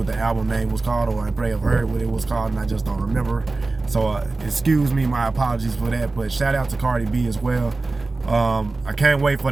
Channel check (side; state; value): left; quieter; 3.4 dB